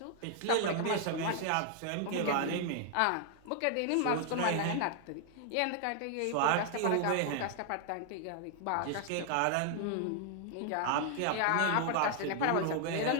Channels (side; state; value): both; different; correlation 0.00